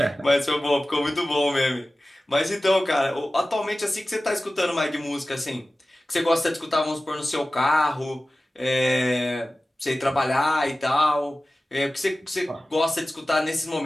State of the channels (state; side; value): normal; both; correlation 0.96